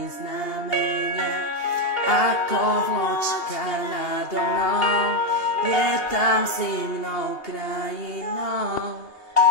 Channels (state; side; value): late; right; 2.8 ms